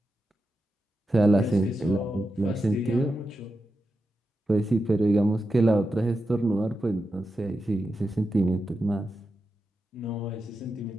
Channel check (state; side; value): normal; both; correlation 0.89